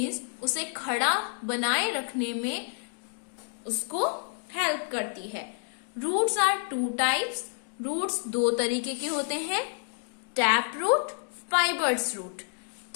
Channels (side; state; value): right; silent; 58 dB below the other